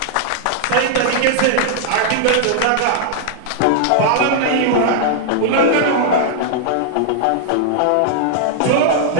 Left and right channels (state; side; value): different; both; correlation -0.01